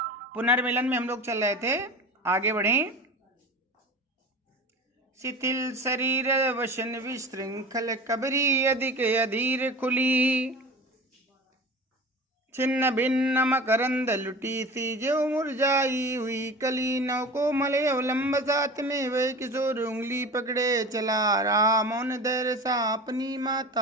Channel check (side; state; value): both; normal; correlation 0.35